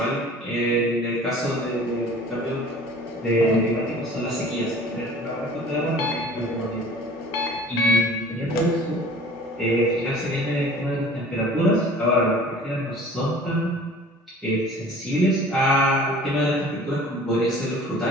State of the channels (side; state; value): both; normal; correlation 0.46